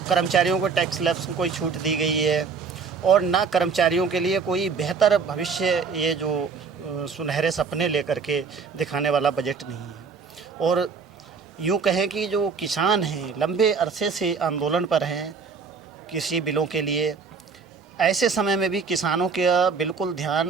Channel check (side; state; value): left; quieter; 5.3 dB